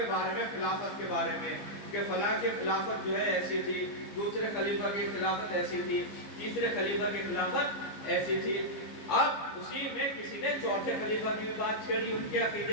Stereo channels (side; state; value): right; late; 15 ms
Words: بارے میں، خلافت کے بارے میں، کہ فلاں کی خلافت جو ہے ایسی تھی، دوسرے خلیفہ کی خلافت ایسی تھی، تیسرے خلیفہ کی خلافت ایسی تھی۔ اب اسی میں کسی نے چوتھے خلیفہ کی بات چھیڑی ان کے